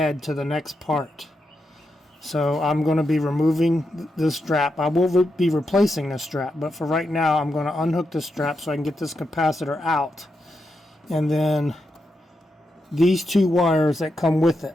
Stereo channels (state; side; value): normal; both; correlation 0.85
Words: to the next part. So I'm going to be removing this strap. I will be replacing this strap, but for right now I'm going to unhook this strap so I can get this capacitor out. And then these two wires that come with